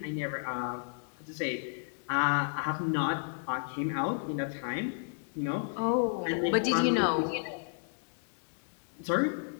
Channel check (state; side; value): silent; right; digital silence